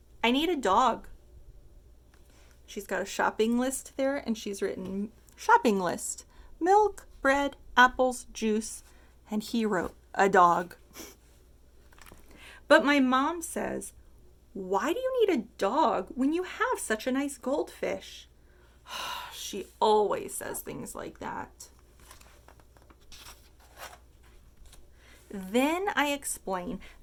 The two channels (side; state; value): both; identical; correlation 1.00